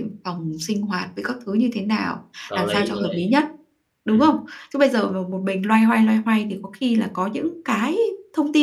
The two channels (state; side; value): identical; both; correlation 1.00